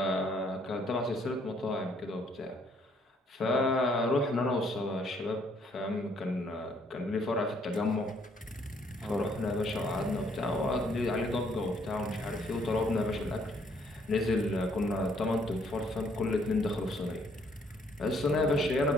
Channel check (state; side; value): normal; both; correlation 0.67